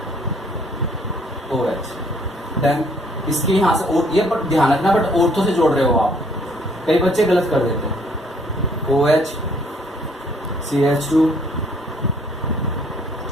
देन इसके यहाँ से, और ये बट ध्यान रखना, बट ऑर्थो से जोड़ रहे हो आप, कई बच्चे गलत कर देते हैं, OH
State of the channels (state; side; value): normal; both; correlation 0.63